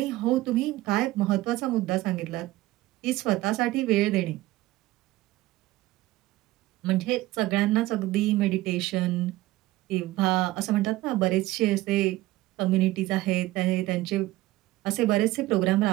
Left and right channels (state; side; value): quieter; left; 17.3 dB